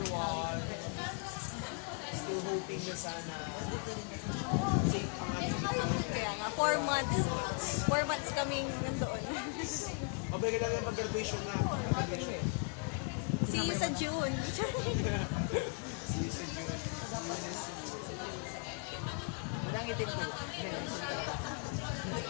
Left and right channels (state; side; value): quieter; right; 35.9 dB